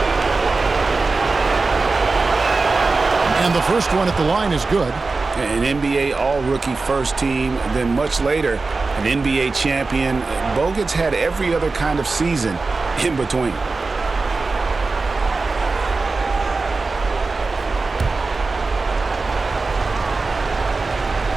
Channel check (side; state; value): left; quieter; 3.8 dB